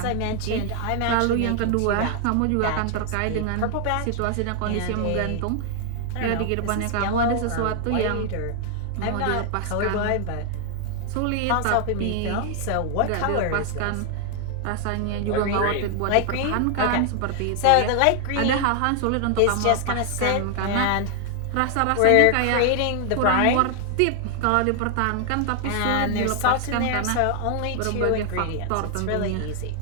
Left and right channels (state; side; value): different; both; correlation 0.00